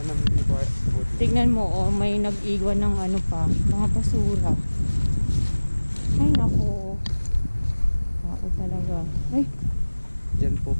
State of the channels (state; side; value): inverted; both; correlation -1.00